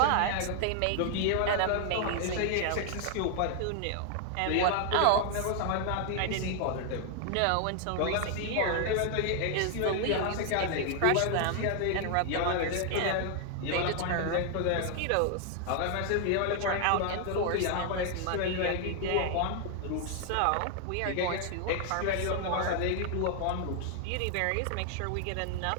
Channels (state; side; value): different; both; correlation 0.00